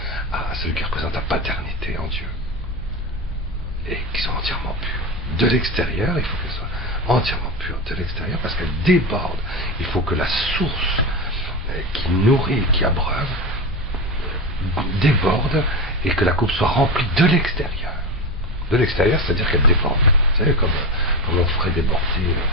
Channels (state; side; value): normal; both; correlation 0.21